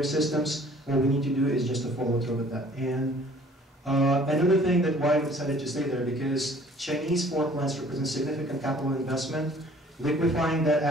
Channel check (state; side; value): normal; both; correlation 0.54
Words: systems. What we need to do is just to follow through with that. And another thing that why we decided to stay there, because Chinese fork plants represent significant capital investment. Liquefying that